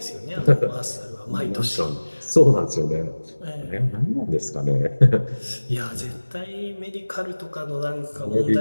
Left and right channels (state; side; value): inverted; both; correlation -1.00